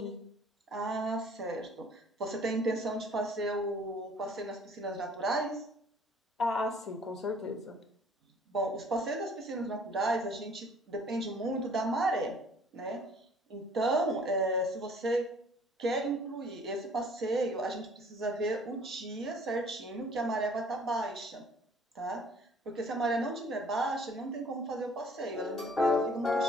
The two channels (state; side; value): normal; both; correlation 0.55